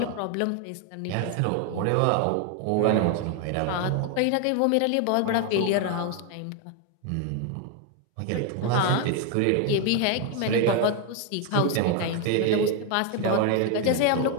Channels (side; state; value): both; different; correlation 0.01